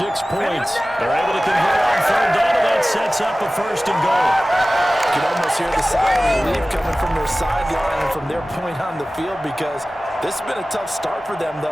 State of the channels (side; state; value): both; normal; correlation 0.97